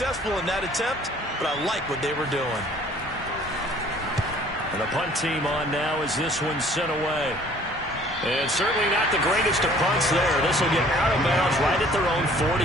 in that attempt, but I like what they were doing. And the punt team on now as this one's sent away. And certainly not the greatest of punts there. This will get out of bounds right at their own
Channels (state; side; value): normal; both; correlation 0.54